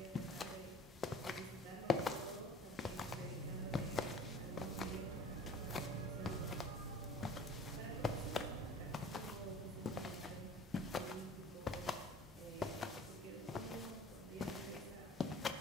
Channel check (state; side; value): normal; both; correlation 0.46